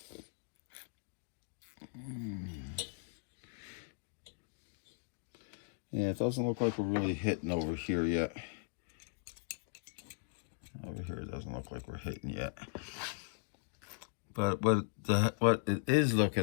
Yeah, it doesn't look like we're really hitting over here yet. Over here, it doesn't look like we're hitting yet. But what it is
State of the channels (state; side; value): silent; right; digital silence